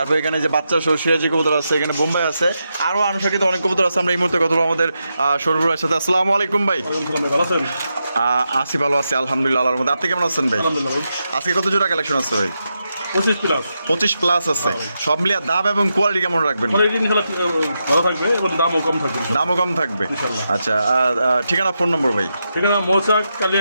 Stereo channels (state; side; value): inverted; both; correlation -0.86